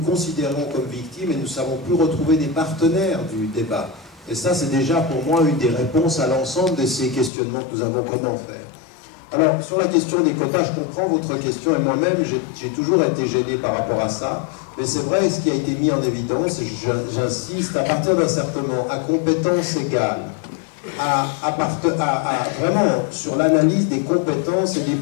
comme victimes et nous ne savons plus retrouver des partenaires du débat. Et ça, c'est déjà pour moi une des réponses à l'ensemble de ces questionnements que nous avons. Comment faire? Alors, sur la question des quotas, je comprends votre question, et moi-même, j'ai toujours été gêné par rapport à ça. Mais c'est vrai, ce qui a été mis en évidence, et j'insiste, à partir d'un certain moment, à compétences égales, vraiment sur l'analyse des compétences et des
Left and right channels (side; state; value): right; drops out; at 7.3 s